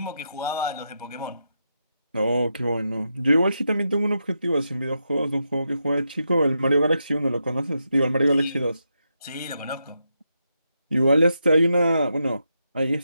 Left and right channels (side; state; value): both; inverted; correlation -0.84